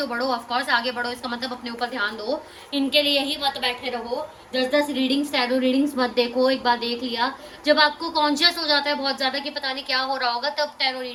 बढ़ो, ऑफ कोर्स आगे बढ़ो, इसका मतलब अपने ऊपर ध्यान दो, इनके लिए ही मत बैठे रहो। 10-10 रीडिंग्स, टैरो रीडिंग्स मत देखो। एक बार देख लिया, जब आपको कॉन्शियस हो जाता है बहुत ज्यादा कि पता नहीं क्या हो रहा होगा, तब टैरो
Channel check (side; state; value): both; identical; correlation 1.00